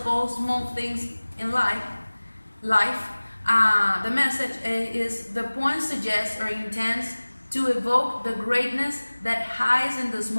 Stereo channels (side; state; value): both; inverted; correlation -1.00